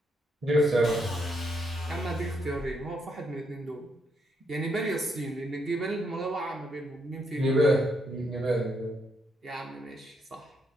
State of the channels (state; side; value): normal; both; correlation 0.76